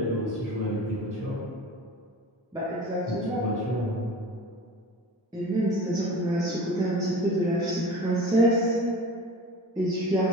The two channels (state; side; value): normal; both; correlation 0.38